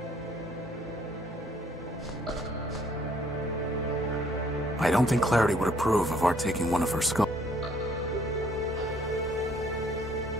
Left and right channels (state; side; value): normal; both; correlation 0.63